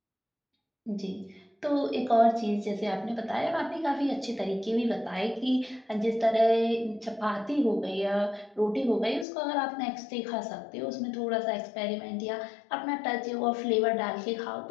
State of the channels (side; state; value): right; drops out; at 9.2 s